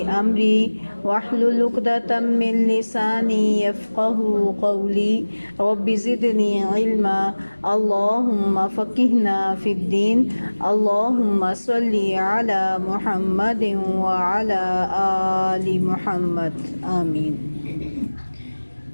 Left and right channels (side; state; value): both; inverted; correlation -1.00